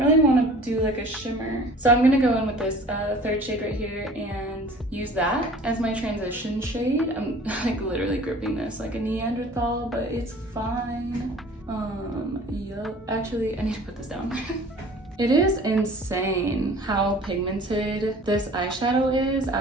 want to do like a shimmer. So I'm gonna go in with this third shade right here and use that as my transition shade. I'm like literally gripping this like a Neanderthal, but it's fine. Yup. Actually, I need to put this down. It is insane how pigmented this eyeshadow is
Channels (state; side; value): normal; both; correlation 0.47